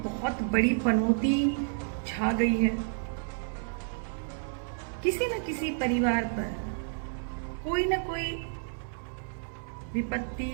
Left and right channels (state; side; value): silent; left; digital silence